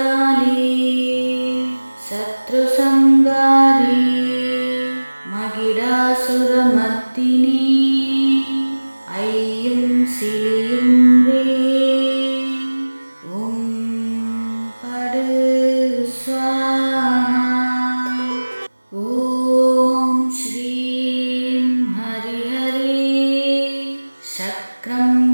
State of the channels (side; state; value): both; inverted; correlation -1.00